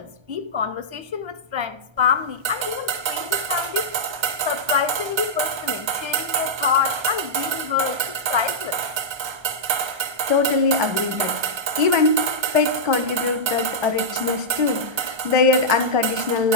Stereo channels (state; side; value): late; left; 1.3 ms